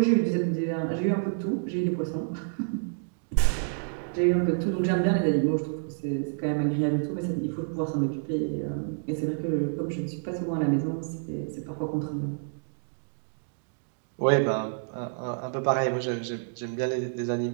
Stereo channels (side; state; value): left; silent; digital silence